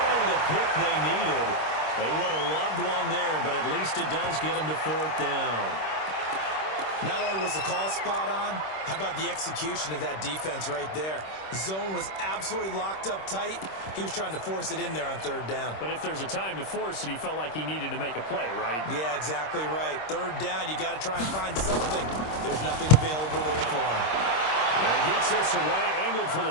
the pick they needed. They would have loved one there, but at least it does get them to 4th down. Not only was the call spot on, how about the execution of that defense right there? The zone was absolutely locked up tight. He was trying to force it in there on 3rd down. But if there's a time to force it, he felt like he needed to make a play, right? Yeah, exactly right. 3rd down, you got to try and find something. There's nothing available there for him. And he gets this away, angled for the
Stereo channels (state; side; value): late; right; 26 ms